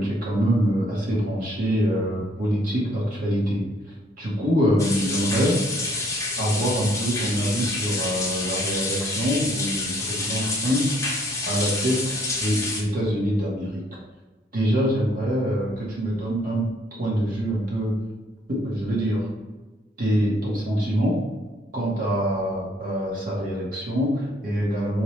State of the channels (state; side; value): normal; both; correlation 0.65